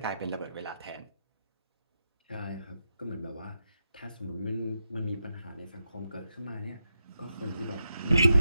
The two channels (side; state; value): both; inverted; correlation -0.85